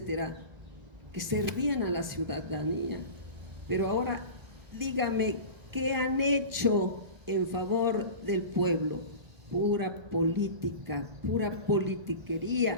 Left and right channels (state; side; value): late; left; 1.4 ms